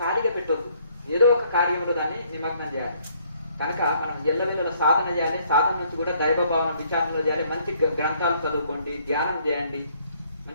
పెట్టొద్దు, ఏదో ఒక కార్యంలో దాన్ని నిమగ్నం చేయాలి. కనుక మనం ఎల్లవెల్లల సాధన చేయాలి. సాధన నుంచి కూడా దైవభావన విచారణలు చేయాలి. మంచి గ్రంథాలు చదువుకోండి, ధ్యానం చేయండి,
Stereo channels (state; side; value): inverted; both; correlation -0.64